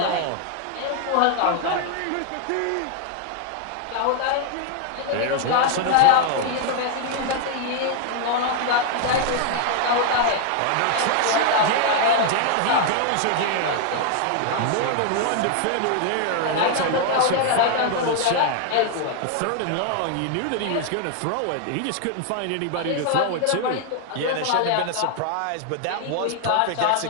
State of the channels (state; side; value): different; both; correlation 0.00